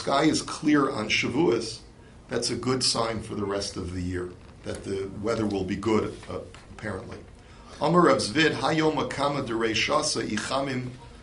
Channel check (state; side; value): identical; both; correlation 1.00